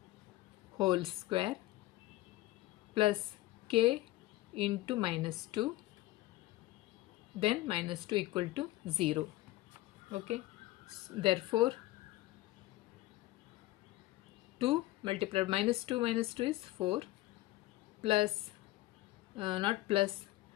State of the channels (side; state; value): right; quieter; 17.3 dB